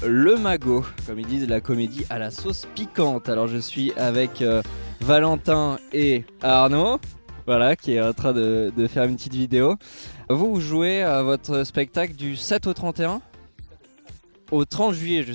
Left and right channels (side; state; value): both; inverted; correlation -1.00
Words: Le Magot, comme ils disent, la comédie à la sauce piquante. Alors je suis avec Valentin et Arnaud, voilà, qui est en train de faire une petite vidéo. Vous jouez à votre spectacle du 7 au 31 au 30 juillet